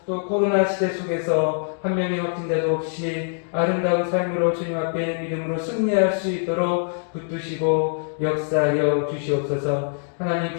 또 코로나 시대 속에서 한 명의 확진자도 없이 아름다운 삶으로 주님 앞에 믿음으로 승리할 수 있도록 붙드시고 역사하여 주시옵소서. 하나님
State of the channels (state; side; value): silent; right; digital silence